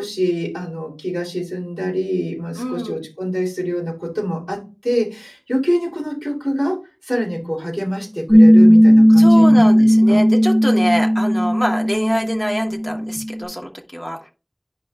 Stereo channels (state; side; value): identical; both; correlation 1.00